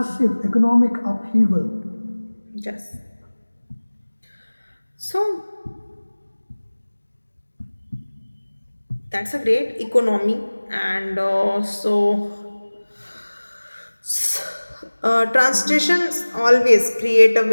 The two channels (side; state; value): both; inverted; correlation -1.00